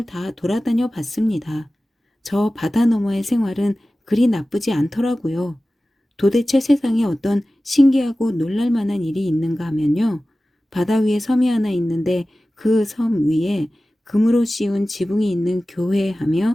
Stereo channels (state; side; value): normal; both; correlation 0.96